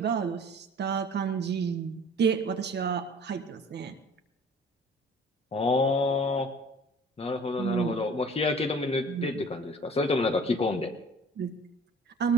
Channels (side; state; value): both; normal; correlation 0.48